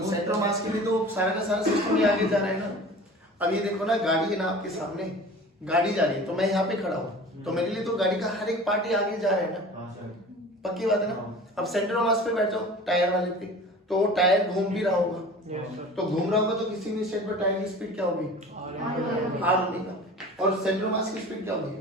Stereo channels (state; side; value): normal; both; correlation 0.40